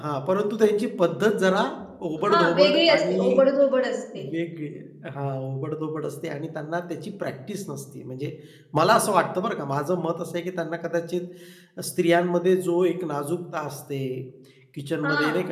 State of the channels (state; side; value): identical; both; correlation 1.00